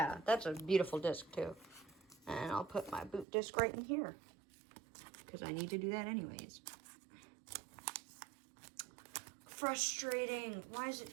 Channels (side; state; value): left; drops out; at 3.2 s